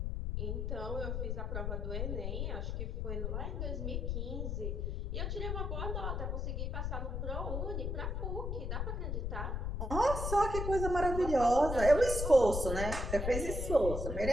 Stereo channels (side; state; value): left; noise; rumble, 2 dB below the sound